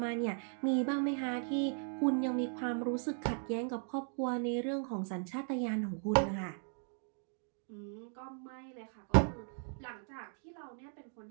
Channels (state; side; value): silent; left; 53 dB below the other